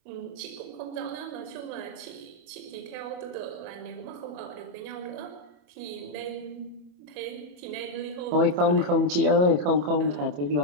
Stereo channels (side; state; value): left; late; 27 ms